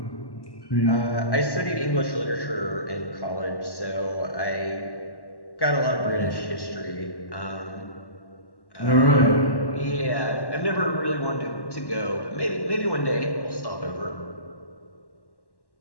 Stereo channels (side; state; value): right; late; 1.1 ms